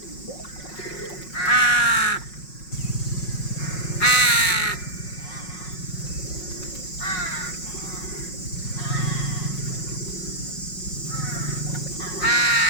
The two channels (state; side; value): late; right; 5.5 ms